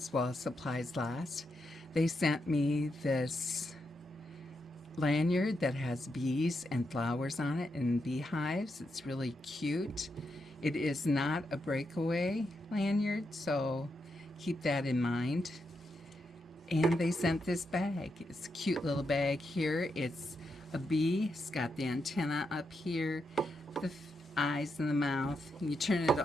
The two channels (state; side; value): normal; both; correlation 0.83